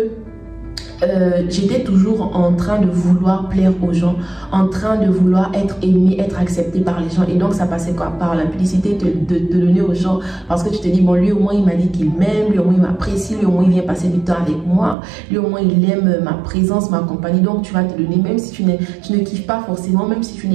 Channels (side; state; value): left; drops out; at 15.0 s